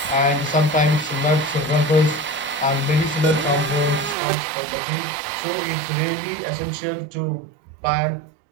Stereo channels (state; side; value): drops out; left; at 4.2 s